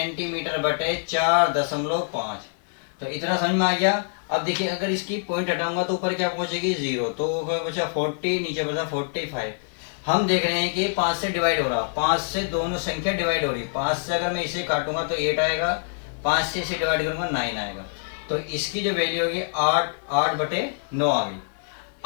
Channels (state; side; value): silent; right; 62 dB below the other